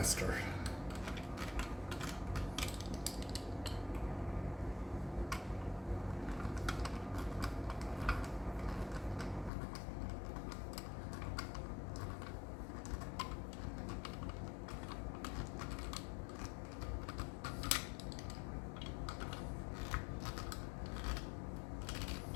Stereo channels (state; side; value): drops out; right; at 9.5 s